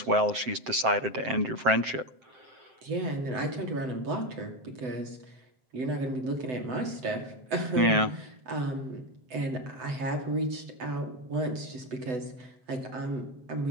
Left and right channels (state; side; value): late; left; 7.7 ms